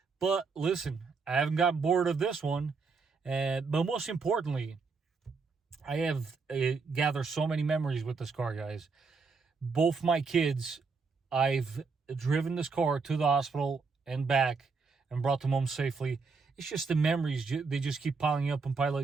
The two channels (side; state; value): left; quieter; 4.7 dB